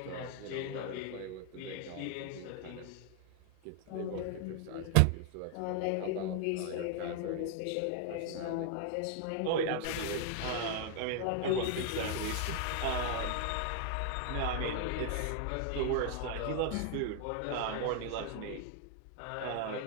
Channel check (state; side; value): different; both; correlation 0.00